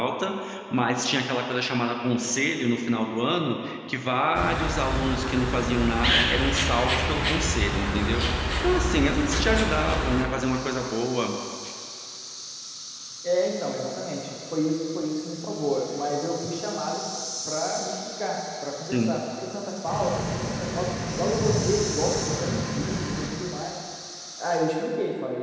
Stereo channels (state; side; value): identical; both; correlation 1.00